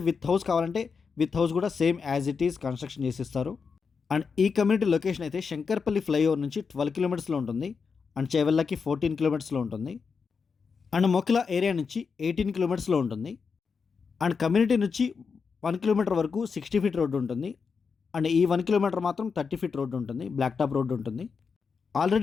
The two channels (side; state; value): right; quieter; 5.5 dB